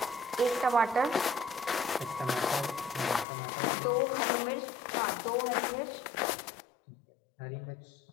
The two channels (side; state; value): right; drops out; at 3.2 s